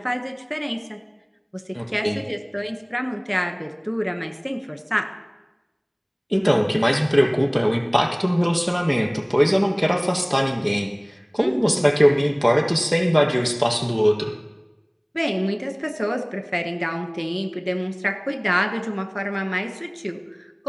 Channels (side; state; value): both; identical; correlation 1.00